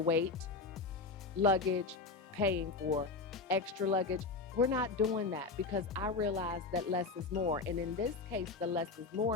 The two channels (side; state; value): right; quieter; 4.0 dB